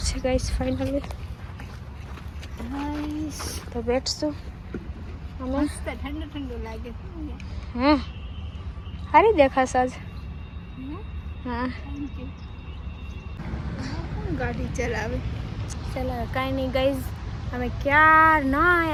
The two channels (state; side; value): identical; both; correlation 1.00